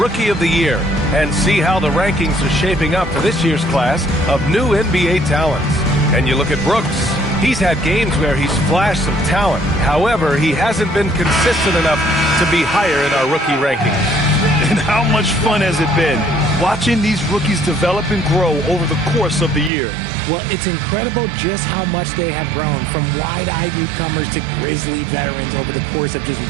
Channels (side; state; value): left; drops out; at 19.7 s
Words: of the Year and see how the rankings are shaping up for this year's class of new NBA talents. And you look at Brooks. He's had games where he's flashed some talent. However, he hasn't been consistent enough to be higher in our rookie rankings. And how much fun has it been watching these rookies develop and grow over the course of the year? Well, it's incredible just how much they have grown from wide-eyed newcomers to grizzly veterans over the course of just